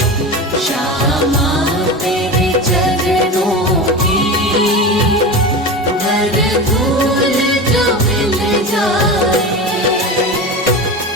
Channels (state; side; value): normal; both; correlation 0.27